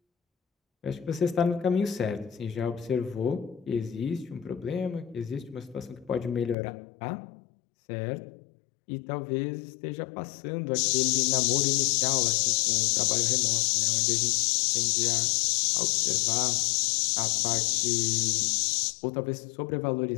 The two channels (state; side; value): drops out; right; at 6.6 s